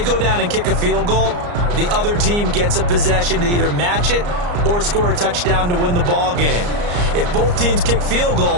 go down and kick a field goal, the other team gets a possession to either match it or score a touchdown to win the ball game. If both teams kick field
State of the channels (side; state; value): left; late; 34 ms